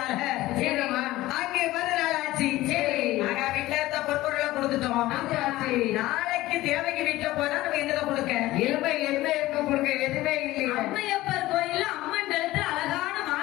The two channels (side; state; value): right; quieter; 17.0 dB